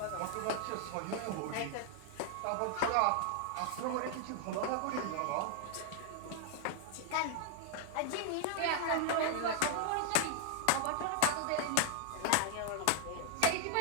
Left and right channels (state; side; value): different; both; correlation -0.01